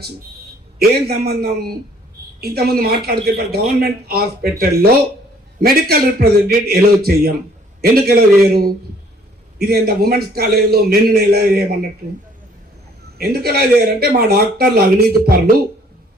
ఏం సంబంధం? ఇంతకుముందు మాట్లాడితే గవర్నమెంట్ హాస్పిటల్లో మెడికల్ రిప్రజెంటేటివ్ ఎలో చెయ్యం. ఎందుకు ఎలా చేయరు? ఇది ఎంత ఉమెన్స్ కాలేజీలో మెన్ను ఎలా చేయమన్నట్టు. ఎందుకు ఎలా చేయరంటే మా డాక్టర్లు అవినీతి పరులు,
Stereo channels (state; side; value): normal; both; correlation 0.60